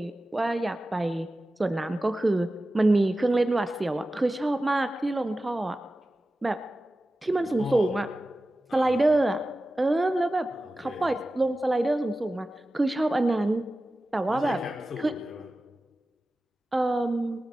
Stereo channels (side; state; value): both; normal; correlation 0.95